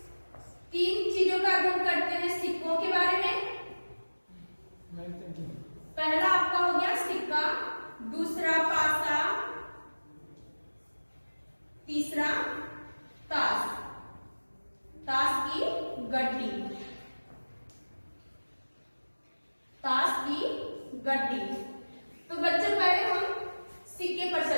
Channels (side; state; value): both; inverted; correlation -1.00